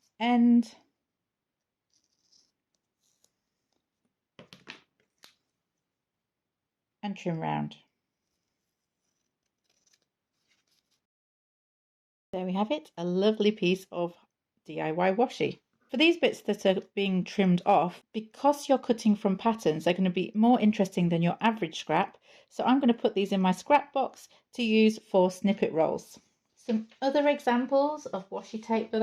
end, and trim round. There we have it, a lovely piece of DIY washi. For these bits that are being trimmed off, because you're cutting from patterns, they're going to be more interesting than your average scrap. So I'm going to put these in my scrap box to use for snippet rolls. Some other examples of washi tape that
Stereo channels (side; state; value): both; identical; correlation 1.00